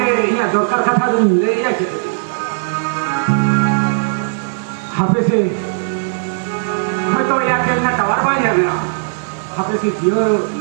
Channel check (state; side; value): silent; left; digital silence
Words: ini dokter kata dun dia gitu HP से तो या चलना टावर वाला है HP से जियो